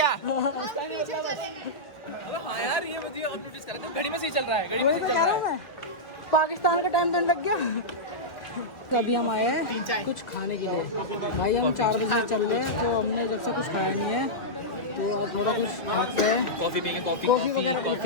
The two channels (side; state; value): right; late; 2.0 ms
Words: अबे हाँ यार ये मुझे अब नोटिस करा था, घड़ी में सही चल रहा है। घड़ी में वही तो कह रहा हूँ मैं, पाकिस्तान का टाइम तो लग गया। अभी हम आए हैं कुछ खाने के लिए। भाई हम 4 बजे चल रहे हैं, तो हमने जब से कुछ खाया नहीं है, तो अब थोड़ा कुछ खाते हैं। कॉफी पीएंगे, कॉफी वगैरह